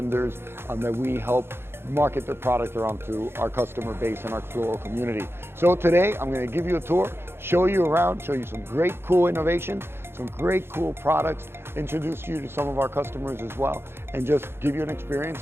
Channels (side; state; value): left; late; 0.11 ms